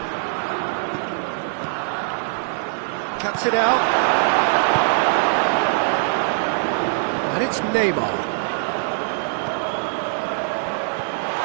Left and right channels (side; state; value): left; silent; 64 dB below the other